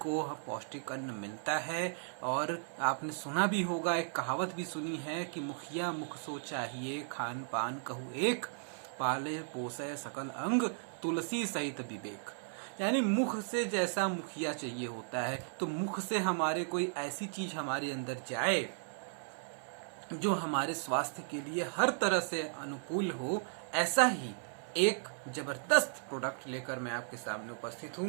पौष्टिक अन्न मिलता है। और आपने सुना भी होगा, एक कहावत भी सुनी है कि मुखिया मुख सो चाहिए, खान पान कहू एक, पाले पोसे सकल अंग, तुलसी सहित विवेक। यानी मुख से जैसा मुखिया चाहिए होता है, तो मुख से हमारे कोई ऐसी चीज हमारे अंदर जाए जो हमारे स्वास्थ्य के लिए हर तरह से अनुकूल हो। ऐसा ही एक जबरदस्त प्रोडक्ट लेकर मैं आपके सामने उपस्थित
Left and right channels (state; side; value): silent; left; 54 dB below the other